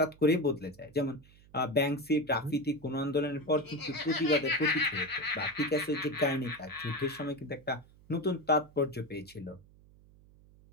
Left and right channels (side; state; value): right; noise; hum, 25 dB below the sound